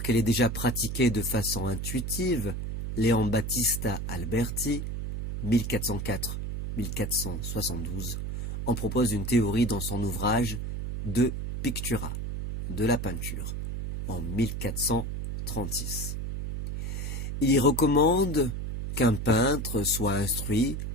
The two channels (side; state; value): right; noise; hum, 4 dB below the sound